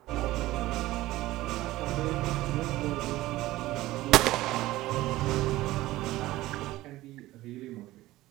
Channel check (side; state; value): left; quieter; 17.0 dB